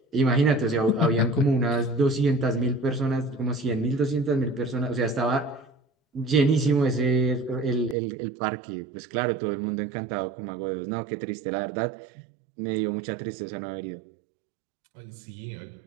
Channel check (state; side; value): drops out; left; at 8.0 s